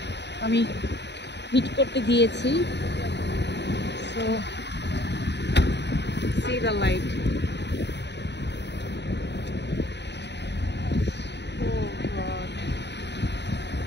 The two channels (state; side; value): late; right; 0.50 ms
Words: আমি হিট করতে দিয়েছি। So see the light. Oh God.